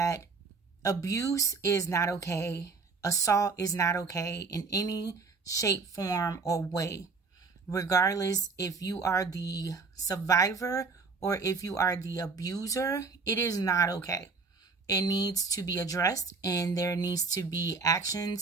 abuse is not okay. Assault is not okay in any shape, form, or way. Regardless if you are the survivor or if you are the abuser, it is not okay. It needs to be addressed, and there needs to be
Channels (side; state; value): left; quieter; 4.4 dB